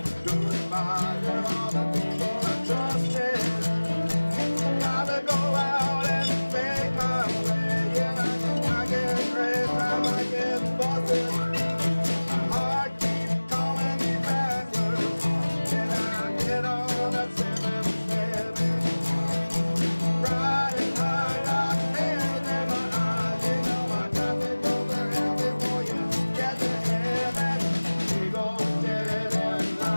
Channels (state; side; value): inverted; both; correlation -1.00